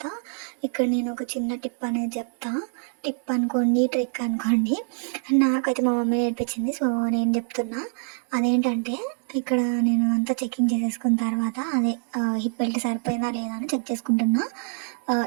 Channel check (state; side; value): silent; left; 62 dB below the other